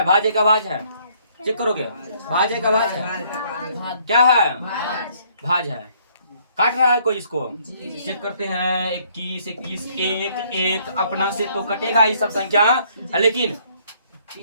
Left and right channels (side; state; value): both; inverted; correlation -0.64